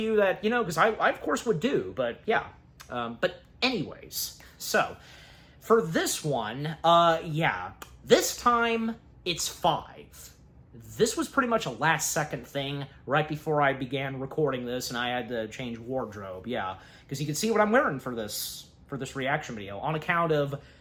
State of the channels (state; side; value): identical; both; correlation 1.00